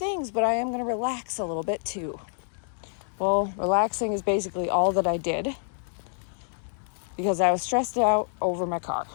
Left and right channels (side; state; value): right; silent; digital silence